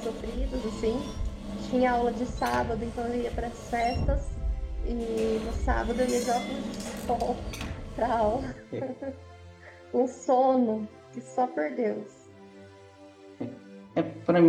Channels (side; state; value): both; identical; correlation 1.00